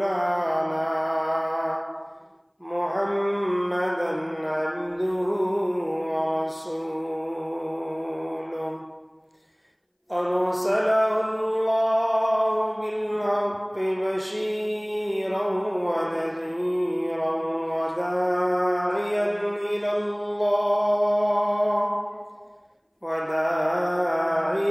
محمدا عبده ورسوله أرسله الله بالحق بشيرا ونذيرا وداعيا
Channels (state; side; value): identical; both; correlation 1.00